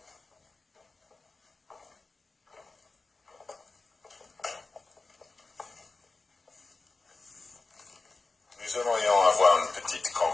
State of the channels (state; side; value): quieter; right; 3.7 dB